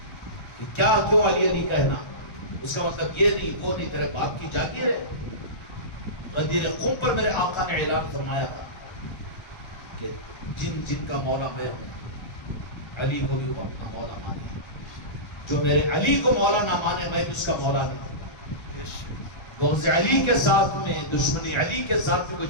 کیا کیوں علی علی کہنا؟ اس کا مطلب یہ نہیں وہ نہیں، تیرے باپ کی جاگیر ہے. غدیر قم پر میرے آقا نے اعلان فرمایا تھا کہ جن جن کا مولا میں ہوں علی کو بھی وہ اپنا مولا مانے. جو میرے علی کو مولا نہ مانے میں بھی اس کا مولا نہیں. بغض علی کے ساتھ میں، دشمنی علی کے ساتھ میں کوئی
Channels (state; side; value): late; right; 1.3 ms